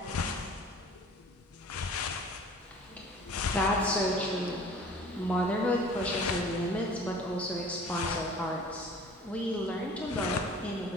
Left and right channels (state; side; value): normal; both; correlation 0.47